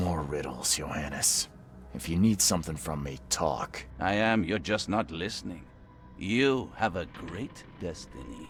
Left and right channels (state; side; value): identical; both; correlation 1.00